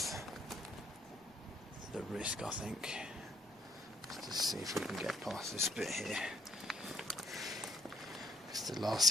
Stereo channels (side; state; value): left; noise; rumble, 29 dB below the sound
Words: the risk, I think. Let's just see if we can get past this bit here. Because the last